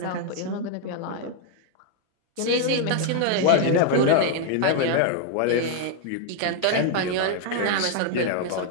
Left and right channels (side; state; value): both; different; correlation 0.00